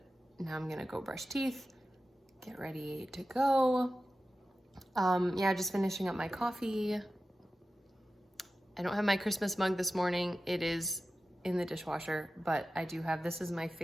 now I'm going to go brush teeth, get ready to go. Yeah, just finishing up my coffee. I don't have my Christmas mug this morning. It is in the dishwasher, but I do have, this is my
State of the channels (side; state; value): both; normal; correlation 0.94